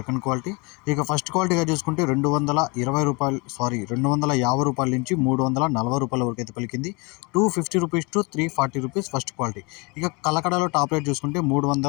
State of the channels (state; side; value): quieter; right; 28.8 dB